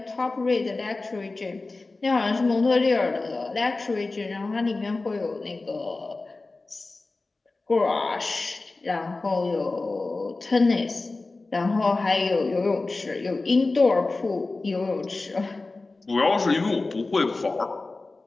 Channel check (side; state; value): right; quieter; 3.4 dB